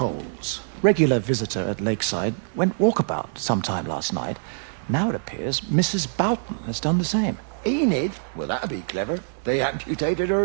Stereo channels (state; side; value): silent; left; digital silence